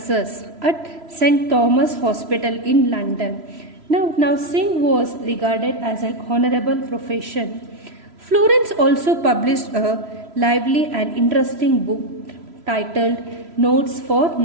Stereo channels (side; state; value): left; late; 3.0 ms